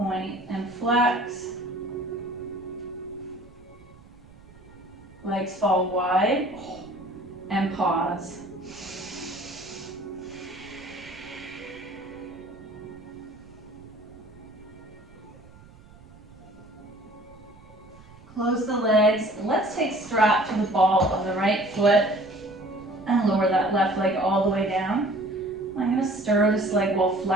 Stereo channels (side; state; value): right; noise; rumble, 22 dB below the sound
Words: and flex. Legs fall wide and pause. Close the legs. Let's take strap to the ball of the right foot and lower that left leg all the way down. I'm going to stir this leg while